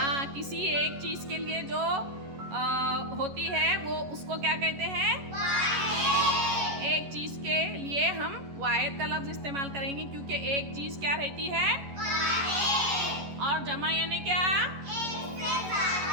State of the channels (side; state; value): left; late; 11 ms